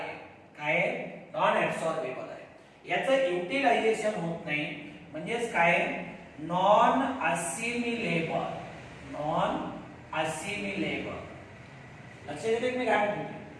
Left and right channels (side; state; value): both; identical; correlation 1.00